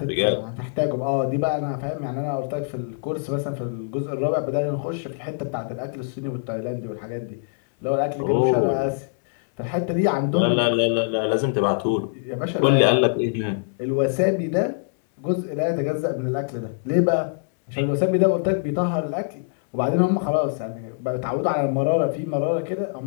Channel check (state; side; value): silent; right; 63 dB below the other